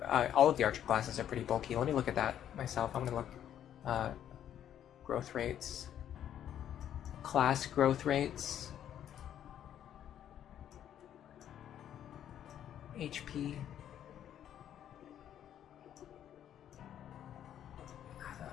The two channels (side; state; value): right; quieter; 10.4 dB